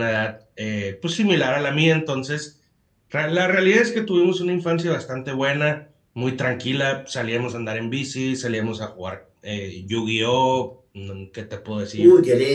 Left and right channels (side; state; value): both; identical; correlation 1.00